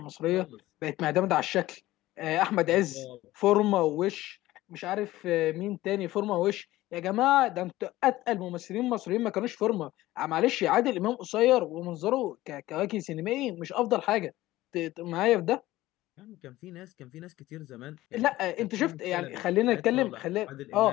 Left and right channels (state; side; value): quieter; right; 16.7 dB